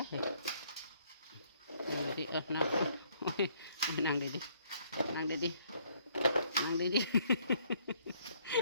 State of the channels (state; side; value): inverted; both; correlation -0.66